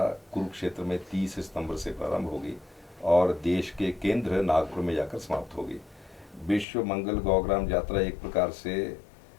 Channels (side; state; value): right; drops out; at 6.7 s